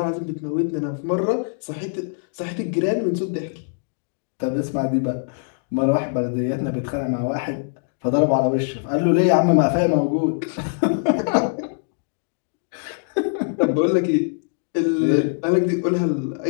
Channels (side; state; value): right; silent; digital silence